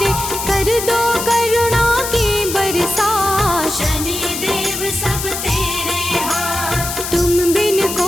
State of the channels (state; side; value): noise; left; hiss, 5 dB below the sound